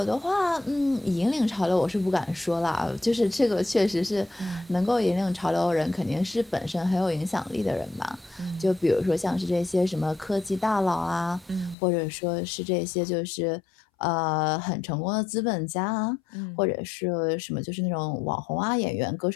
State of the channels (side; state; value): right; drops out; at 11.8 s